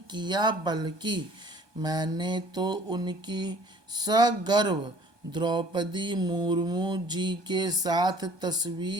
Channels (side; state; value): left; late; 1.2 ms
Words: किया, बल्कि मैंने तो उनकी सगर्व द्रौपदी मुर्मू जी के साथ